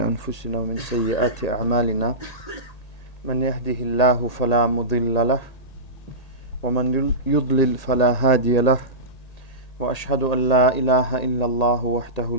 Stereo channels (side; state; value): right; late; 1.8 ms